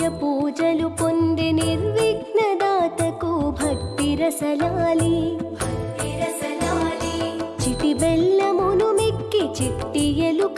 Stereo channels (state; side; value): identical; both; correlation 1.00